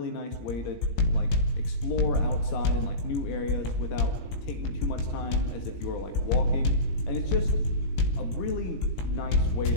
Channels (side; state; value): right; late; 17 ms